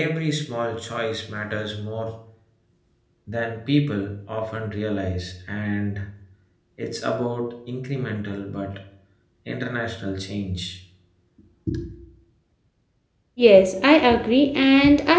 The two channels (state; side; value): identical; both; correlation 1.00